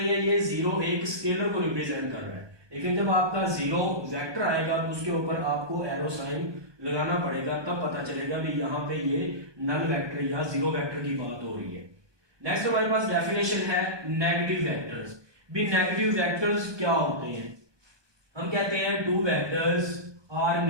है, ये जीरो एक स्केलर को रिप्रेजेंट कर रहा है, लेकिन जब आपका जीरो वेक्टर आएगा तो उसके ऊपर आपको एरो साइन लगाना पड़ेगा, तब पता चलेगा भी यहाँ पे ये नल वेक्टर या जीरो वेक्टर की बात हो रही है। नेक्स्ट हमारे पास डेफिनेशन है नेगेटिव वेक्टर्स। भी नेगेटिव वेक्टर्स क्या होते हैं, हम कहते हैं टू वेक्टर्स आर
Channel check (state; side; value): late; left; 1.2 ms